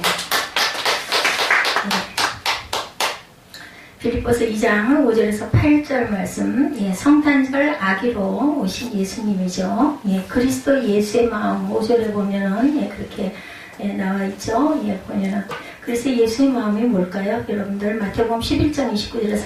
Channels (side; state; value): both; identical; correlation 1.00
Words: 빌립보서 2장 5절에서 8절 말씀, 예, 성탄절 아기로 오신 예수님이죠. 예, 그리스도 예수의 마음 5절에 보면은 예, 그렇게 예, 나와 있죠. 예, 보면은 그래서 예수의 마음이 뭘까요? 여러분들 마태복음 11장 29절에